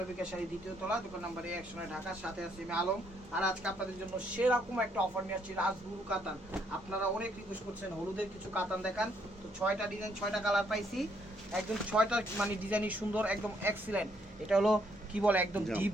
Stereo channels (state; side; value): normal; both; correlation 0.70